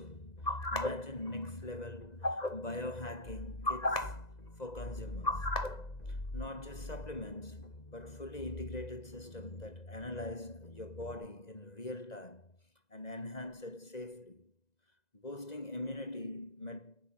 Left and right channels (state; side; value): late; right; 2.0 ms